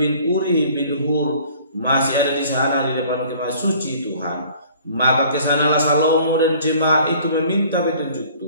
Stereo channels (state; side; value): inverted; both; correlation -0.52